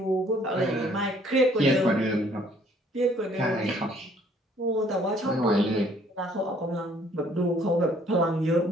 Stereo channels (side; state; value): both; normal; correlation 0.60